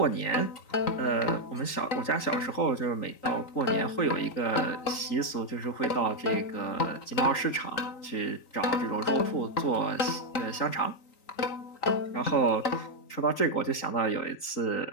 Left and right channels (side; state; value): right; late; 3.9 ms